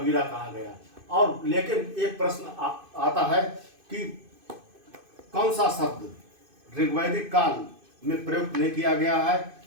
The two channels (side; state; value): left; late; 2.5 ms